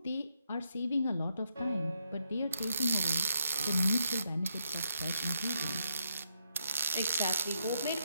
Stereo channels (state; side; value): inverted; both; correlation -0.79